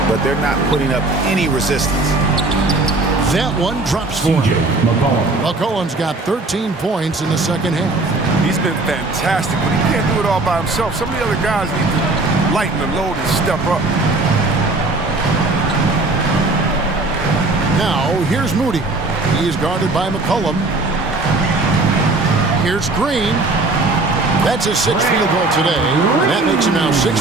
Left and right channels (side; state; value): left; quieter; 3.2 dB